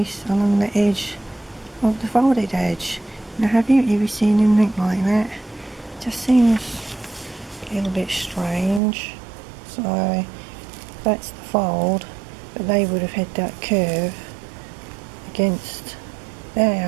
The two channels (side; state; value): left; drops out; at 8.8 s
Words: along the edge of the folded edge. Now, have you ever seen anything like that? Just seems a little bit strange. So that's the fold, but they would have had that curve against